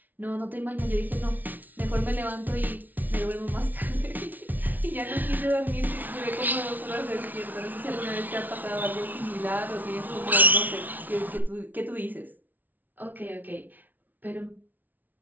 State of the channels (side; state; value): left; late; 0.081 ms